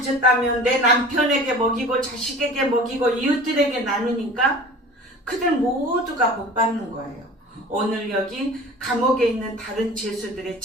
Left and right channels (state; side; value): normal; both; correlation 0.41